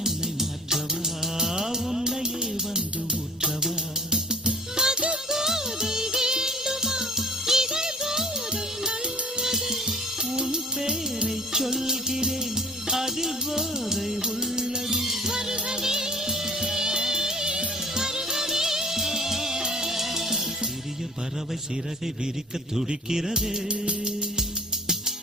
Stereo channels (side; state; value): both; normal; correlation 0.49